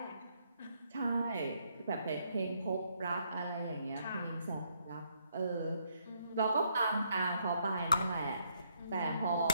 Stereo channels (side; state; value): both; inverted; correlation -0.73